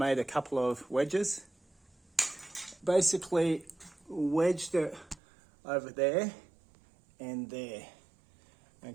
a couple of wedges. Basically wedged it over there and there,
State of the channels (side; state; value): left; drops out; at 5.2 s